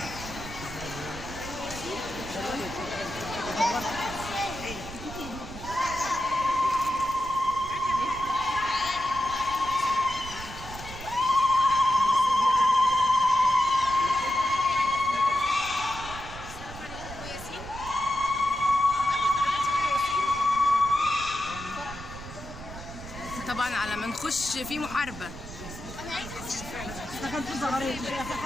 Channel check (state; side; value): noise; right; rumble, 13 dB below the sound